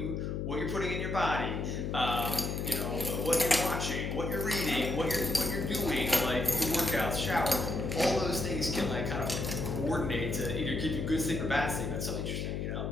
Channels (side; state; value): left; noise; hum, 2 dB below the sound